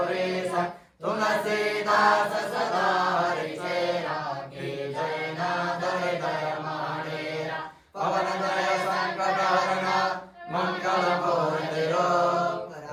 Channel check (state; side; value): identical; both; correlation 1.00